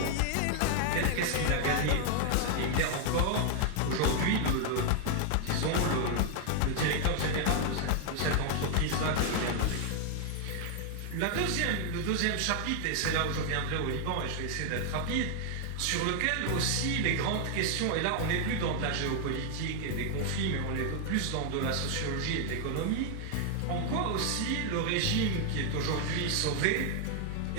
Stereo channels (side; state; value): both; different; correlation 0.00